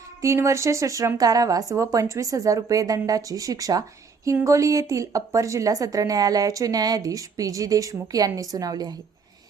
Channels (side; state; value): left; quieter; 5.2 dB